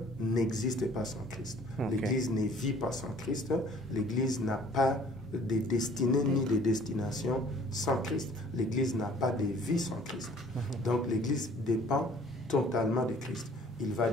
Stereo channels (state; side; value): normal; both; correlation 0.54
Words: n'existe pas sans Christ. L'Église ne vit pas sans Christ. L'Église n'a pas de destinée ni de destination sans Christ. L'Église n'a pas de vie sans Christ. Donc l'Église dépend totalement de Christ. il va